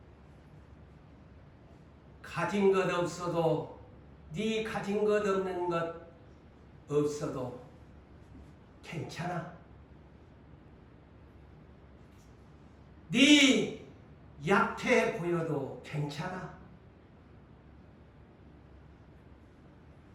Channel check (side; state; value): both; identical; correlation 1.00